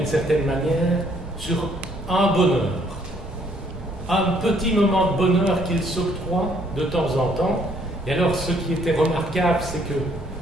certaine manière sur un bonheur. Un petit moment de bonheur qu'ils s'octroient de temps en temps. Et alors, ce qui était remarquable, c'est que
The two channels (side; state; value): both; normal; correlation 0.65